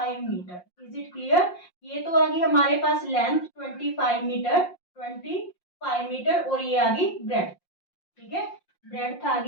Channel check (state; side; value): late; right; 5.6 ms